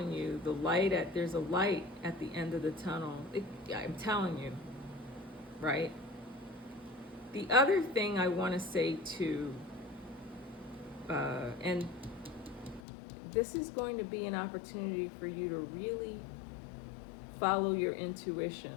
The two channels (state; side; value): drops out; right; at 12.8 s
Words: you, there's a light at the end of the tunnel. I'm telling you, right? The other thing I want to say too, and this is going to be an opportunity for you to really follow your